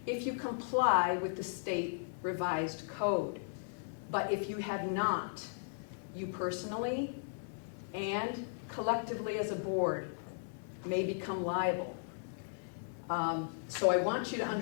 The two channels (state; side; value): silent; right; digital silence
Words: if you comply with the state revised code. But if you have not, you personally and collectively as a board may become liable. So I want you to